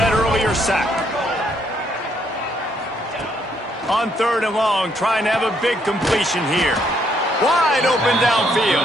earlier sack. On 3rd and long, trying to have a big completion here. Wide open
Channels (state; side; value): normal; both; correlation 0.71